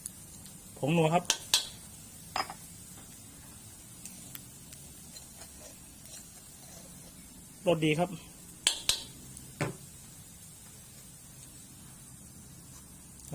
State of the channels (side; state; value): both; identical; correlation 1.00